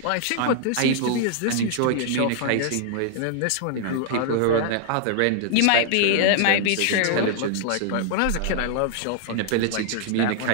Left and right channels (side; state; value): both; different; correlation -0.01